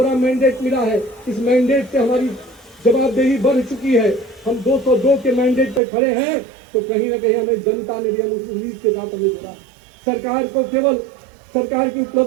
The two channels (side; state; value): left; drops out; at 5.8 s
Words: मैंडेट मिला है। इस मैंडेट से हमारी जवाबदेही बढ़ चुकी है। हम 202 के मैंडेट पे खड़े हैं तो कहीं ना कहीं हमें जनता ने भी उस उम्मीद के साथ हमें जुड़ा। सरकार को केवल सरकार की